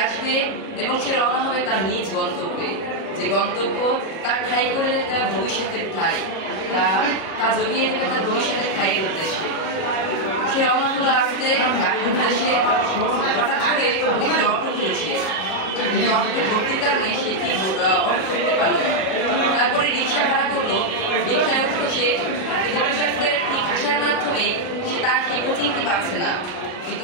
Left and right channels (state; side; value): late; right; 37 ms